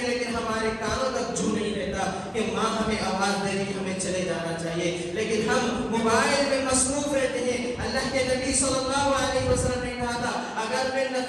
لیکن ہمارے کانوں تک چھو نہیں رہتا کہ ماں ہمیں آواز دے رہی ہمیں چلے جانا چاہیے لیکن ہم موبائل میں مصروف رہتے ہیں. اللہ کے نبی صلی اللہ علیہ وسلم نے کہا تھا اگر میں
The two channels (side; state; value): both; identical; correlation 1.00